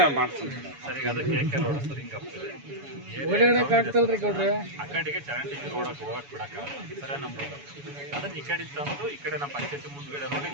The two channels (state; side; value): late; left; 7.1 ms